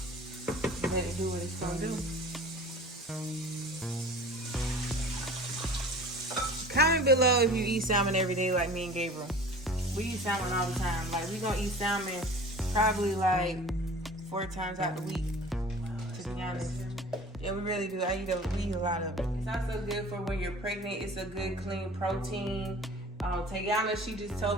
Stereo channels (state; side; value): normal; both; correlation 0.42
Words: let it do what it's gonna do. Comment below if you eat salmon every day like me and Gabriel. We eat salmon all the time. Like we gonna eat salmon probably like 4 times out the week, to be honest. Yeah, we really do. We eat a lot of it. It's also good for when you're pregnant. It's a good clean protein. Tayanna, she just